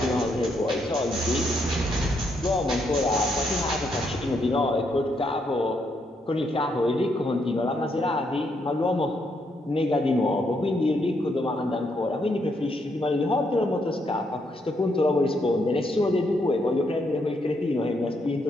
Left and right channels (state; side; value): normal; both; correlation 0.76